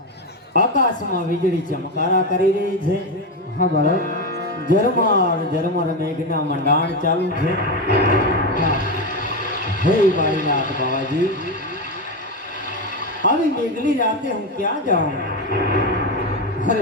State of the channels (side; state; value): both; normal; correlation 0.13